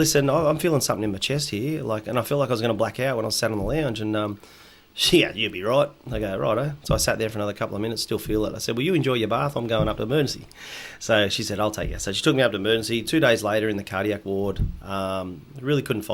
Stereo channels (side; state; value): both; identical; correlation 1.00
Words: I'm feeling something in my chest here. And I felt like I was going to black out when I sat on the lounge. And you'll be right. I go, righto. So I sat there for another couple of minutes, still feel it. I said, well, you enjoy your bath. I'm going up to emergency. So she said, I'll take you. So she took me up to emergency. 2 days later in the cardiac ward, really couldn't